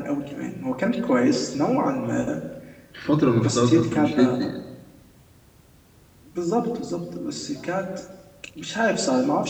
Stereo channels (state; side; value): identical; both; correlation 1.00